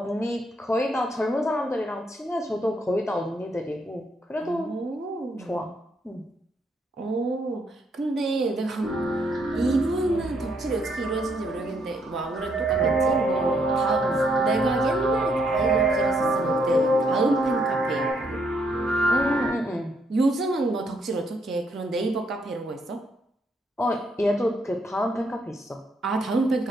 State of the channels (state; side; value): normal; both; correlation 0.73